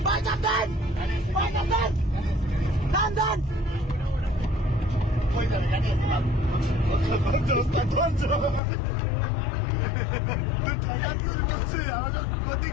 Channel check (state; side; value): drops out; right; at 8.6 s